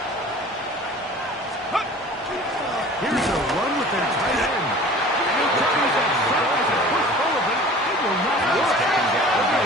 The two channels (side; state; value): both; normal; correlation 0.44